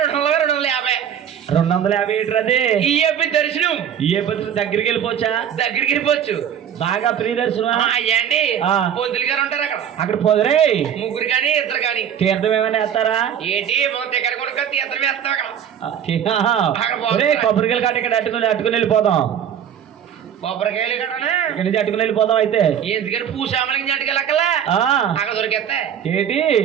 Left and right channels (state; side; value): quieter; left; 9.0 dB